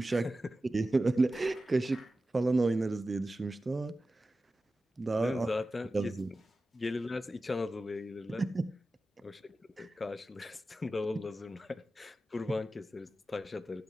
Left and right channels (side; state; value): both; normal; correlation 0.94